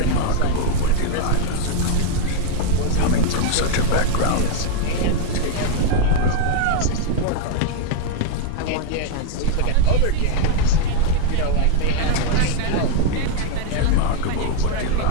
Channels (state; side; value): different; both; correlation 0.00